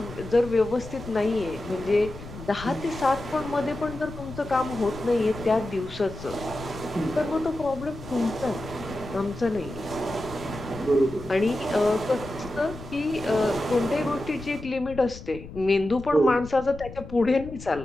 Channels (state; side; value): noise; left; rumble, 13 dB below the sound